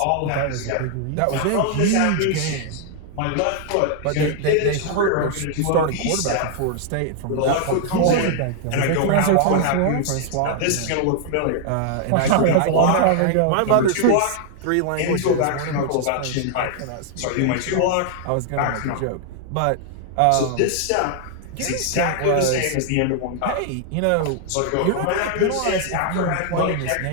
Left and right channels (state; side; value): different; both; correlation 0.00